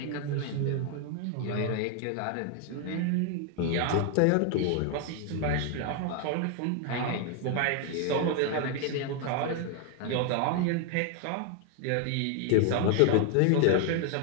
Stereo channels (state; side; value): different; both; correlation 0.00